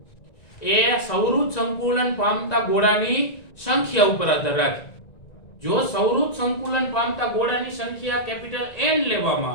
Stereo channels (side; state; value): right; late; 1.9 ms